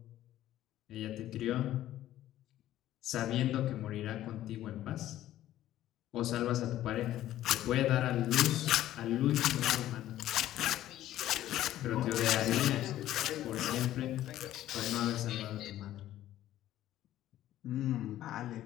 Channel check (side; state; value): right; quieter; 13.4 dB